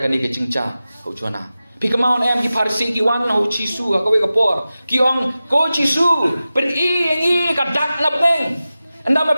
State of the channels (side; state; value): both; inverted; correlation -0.95